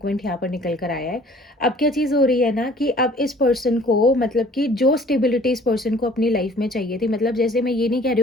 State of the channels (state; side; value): normal; both; correlation 0.53